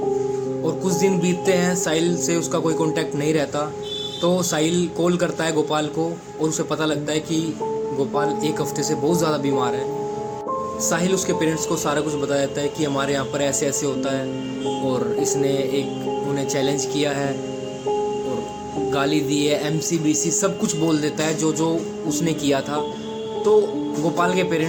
और कुछ दिन बीतते हैं, साहिल से उसका कोई कांटेक्ट नहीं रहता। तो साहिल कॉल करता है गोपाल को और उसे पता लगता है कि गोपाल एक हफ्ते से बहुत ज़्यादा बीमार है। साहिल उसके पेरेंट्स को सारा कुछ बता देता है कि हमारे यहाँ पर ऐसे ऐसे होता है और इसने उन्हें चैलेंज किया है और गाली दी है, MCBC सब कुछ बोल देता है जो जो उसने किया था। तो गोपाल के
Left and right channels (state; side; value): identical; both; correlation 1.00